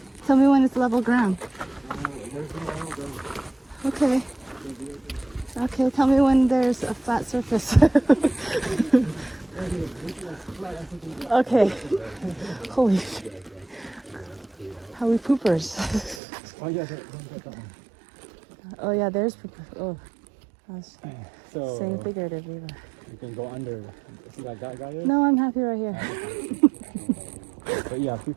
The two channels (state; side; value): drops out; left; at 16.2 s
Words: Tell me when it's level ground. Okay. Okay, tell me when there's a flat surface. Okay. Holy shit. How we poopers. Oh yeah, that one. Oh yeah, there's poopers. Oh. I was So saying figuratively. But... you can go under. See that guy there? No, I'm happy right here. But yeah,